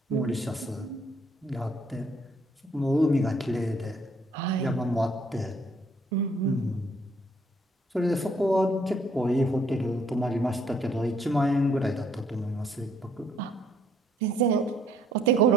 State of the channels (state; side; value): normal; both; correlation 0.65